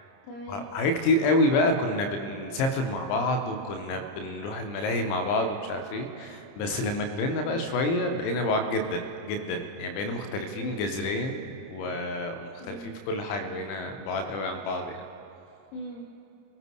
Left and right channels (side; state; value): right; late; 30 ms